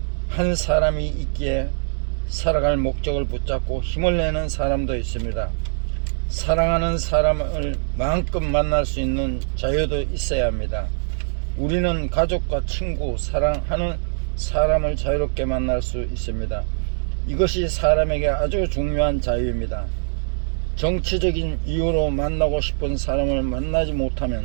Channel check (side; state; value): left; silent; 60 dB below the other